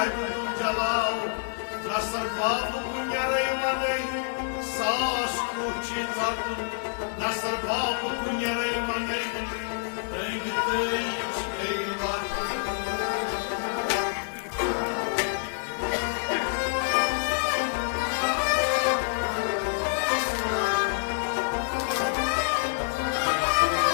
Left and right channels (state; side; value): silent; right; digital silence